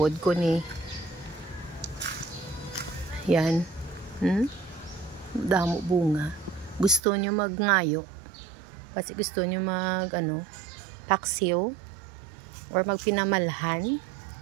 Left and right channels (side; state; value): left; drops out; at 7.0 s